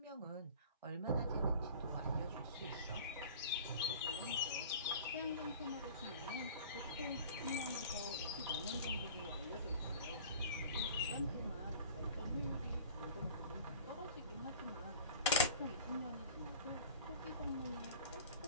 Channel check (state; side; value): inverted; both; correlation -0.43